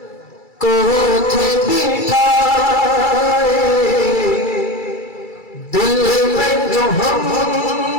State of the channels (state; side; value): late; right; 2.3 ms